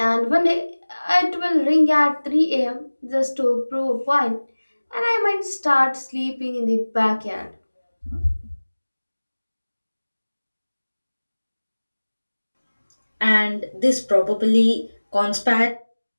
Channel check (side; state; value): both; inverted; correlation -1.00